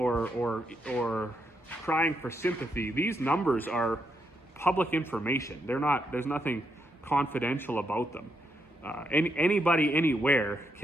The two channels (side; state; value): both; normal; correlation 0.79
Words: crying for sympathy. These numbers are public information. There's nothing confidential about them. Anybody anywhere